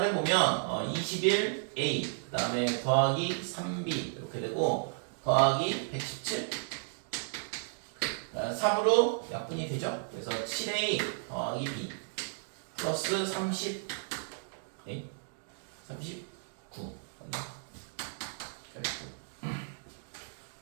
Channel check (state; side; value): silent; left; digital silence